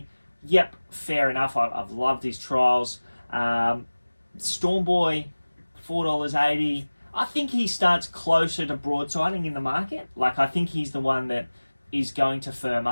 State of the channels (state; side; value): inverted; both; correlation -1.00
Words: Yep, fair enough. I've loved his trials. Stormboy, $4.80. I think he starts closer to broadsiding in the market. Like, I think he's the one that is going to firm